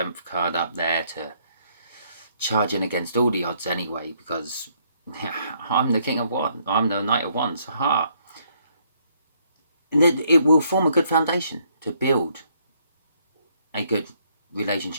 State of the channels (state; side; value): inverted; both; correlation -0.70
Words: card up there to charge in against all the odds anyway, because I'm the King of Wands, I'm the Knight of Wands, haha. And it will form a good foundation to build a good